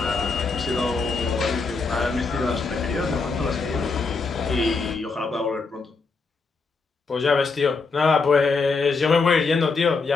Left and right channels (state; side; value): quieter; right; 4.4 dB